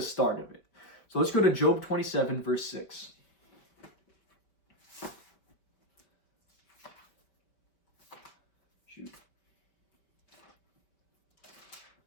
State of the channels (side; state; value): right; late; 5.1 ms